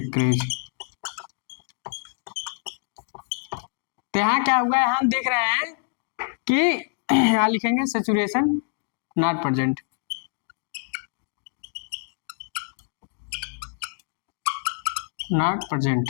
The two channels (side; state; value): right; silent; digital silence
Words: तो यहाँ क्या हुआ, हम देख रहे हैं कि यहाँ लिखेंगे saturation not present, not